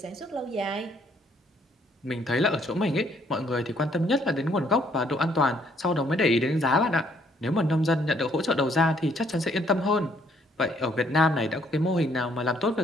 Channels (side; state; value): both; normal; correlation 0.66